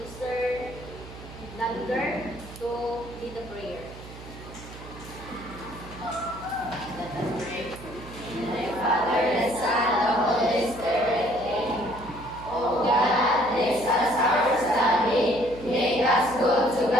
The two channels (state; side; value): noise; right; hum, 15 dB below the sound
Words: Mr. Lander to lead the prayer. Let us pray. In the name of the Father, the Son, and the Holy Spirit. Amen. O God, bless us our study. Make us good to